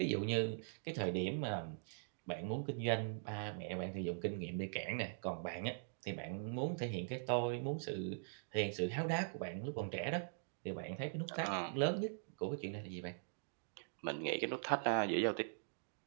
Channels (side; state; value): left; silent; digital silence